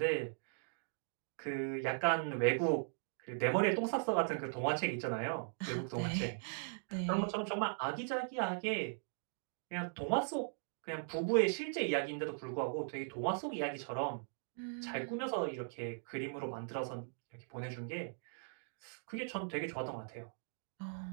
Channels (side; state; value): left; silent; digital silence